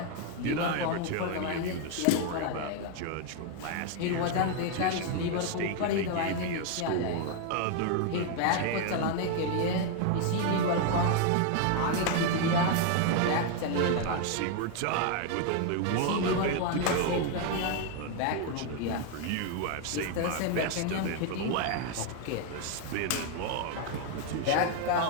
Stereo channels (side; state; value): both; different; correlation 0.01